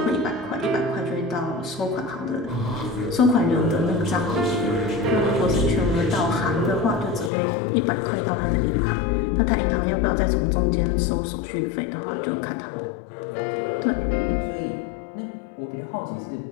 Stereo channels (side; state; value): right; drops out; at 7.3 s